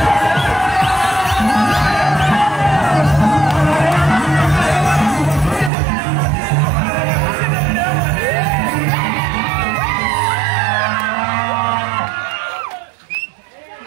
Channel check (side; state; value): left; drops out; at 5.7 s